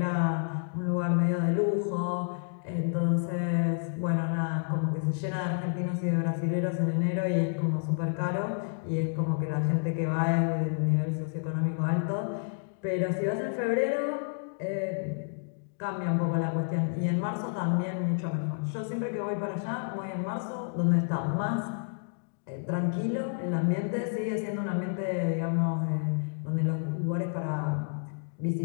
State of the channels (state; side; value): silent; right; digital silence